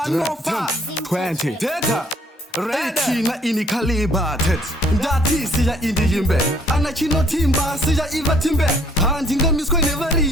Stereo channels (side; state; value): both; normal; correlation 0.62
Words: Data Ready na ini kaliba tet Ndati siya indi yimbe Anachino timba siya iva timbe Handinga misko